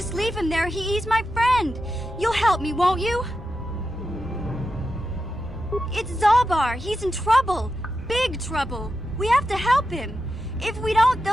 leave him there. He's my friend. You'll help me, won't you? It's Zalbar. He's in trouble. Big trouble. We have to help him. If we don't,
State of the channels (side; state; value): both; normal; correlation 0.89